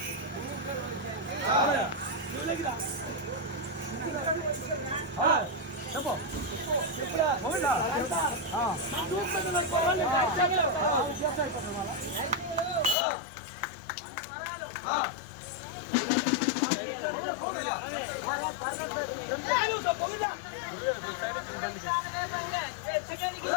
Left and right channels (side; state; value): right; drops out; at 13.0 s